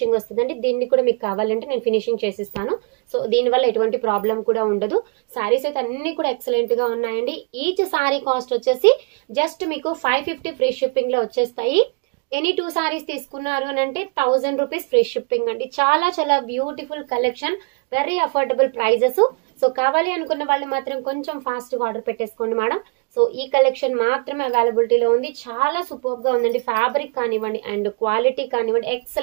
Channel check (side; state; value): left; quieter; 34.1 dB